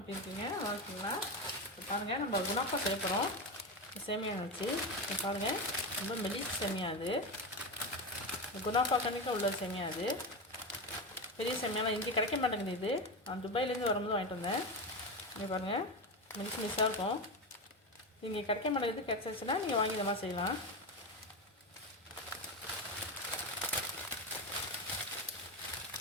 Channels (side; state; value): both; normal; correlation 0.17